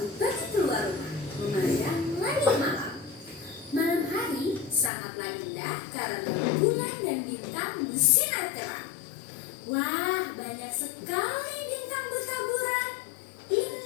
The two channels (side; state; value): right; drops out; at 4.9 s